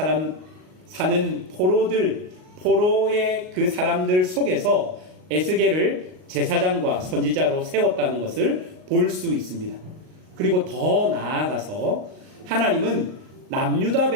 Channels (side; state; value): left; late; 38 ms